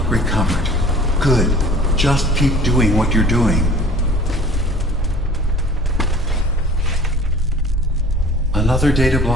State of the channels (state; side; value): normal; both; correlation 0.47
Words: recovered. Good. Just keep doing what you're doing. Another data